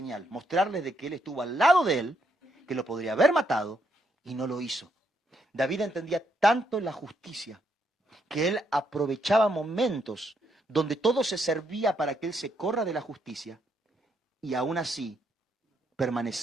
mostrarle de que él estuvo al lado de él, que lo podría haber matado, y no lo hizo. David entendía tanto la justicia, que él aprovechaba momentos donde todo se servía para que él se corra de la justicia, y aún así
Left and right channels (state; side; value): normal; both; correlation 0.76